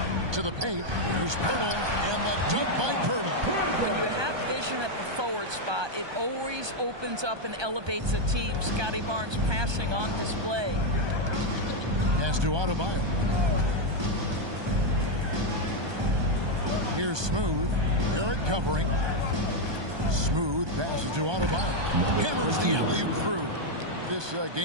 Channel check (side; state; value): left; late; 1.2 ms